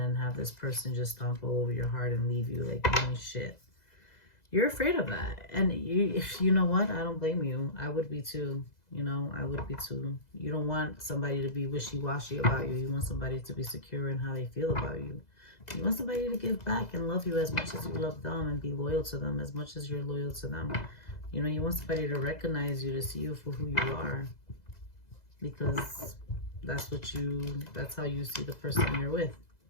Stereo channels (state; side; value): late; right; 2.0 ms